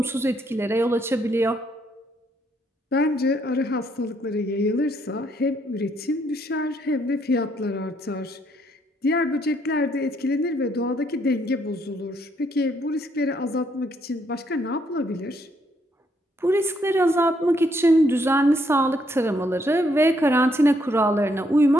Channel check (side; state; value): both; normal; correlation 0.72